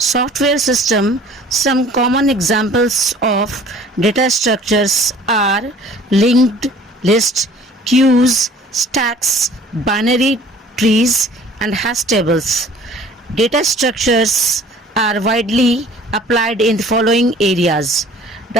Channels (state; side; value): normal; both; correlation 0.50